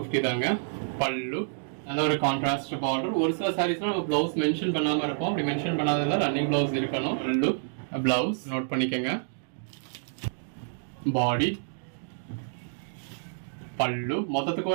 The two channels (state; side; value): silent; left; digital silence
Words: தாங்க. பல்லு, நல்ல ஒரு கான்ட்ராஸ்ட் பார்டர். ஒரு சில சாரீஸ்ல நம்ம பிளவுஸ் மென்ஷன் பண்ணாம இருப்போம். அப்படி மென்ஷன் பண்ணாததுல ரன்னிங் பிளவுஸ் இருக்கணும். பல்லு, பிளவுஸ் நோட் பண்ணிக்கங்க. பாடி, பல்லு, மொத்தத்துக்கு